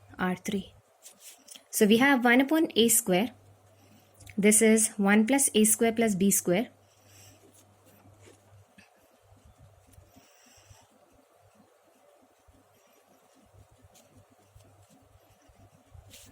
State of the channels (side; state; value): both; identical; correlation 1.00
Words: R3. So we have 1 upon a square. This is 1 plus a square plus b square.